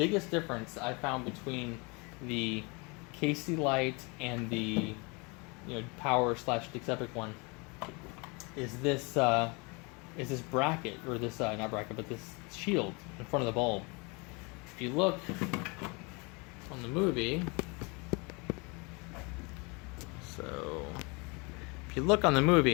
difference I found between the KC light and the power / Dix Epic one is this bracket, or this not bracket, but this shield in front of the bulb. If you look on the movie, so if you look on the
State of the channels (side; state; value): right; quieter; 29.5 dB